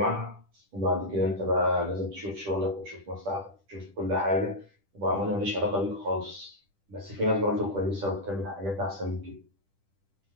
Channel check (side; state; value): left; late; 10 ms